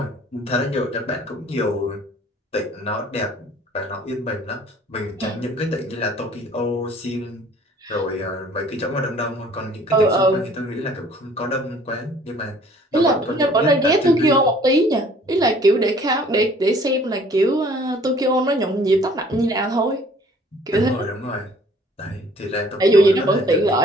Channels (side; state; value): both; normal; correlation 0.55